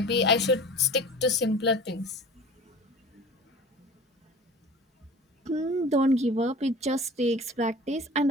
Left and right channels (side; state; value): both; normal; correlation 0.40